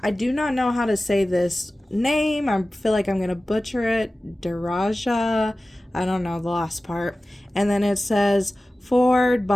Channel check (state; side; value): normal; both; correlation 0.96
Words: I do not know how to say this name. I feel like I'm going to butcher it. Daraja. I don't know the last part. And then it says, forward